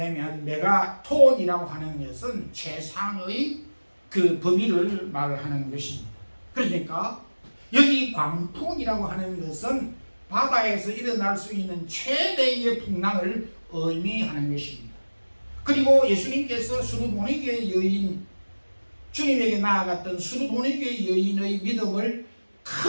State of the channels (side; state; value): both; inverted; correlation -1.00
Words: 메가톤이라고 하는 것은 최상의 그 범위를 말하는 것입니다. 그러니까 여기 광풍이라고 하는 것은 바다에서 일어날 수 있는 최대의 풍랑을 의미하는 것입니다. 그리고 예수님께서 수르보니게 여인, 주님에게 나아갔던 수르보니게 여인의 믿음을